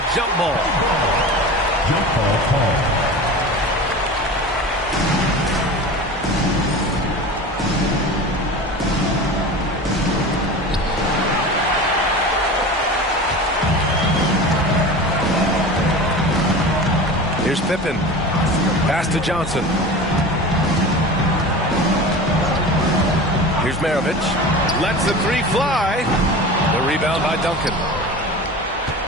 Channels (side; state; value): both; normal; correlation 0.33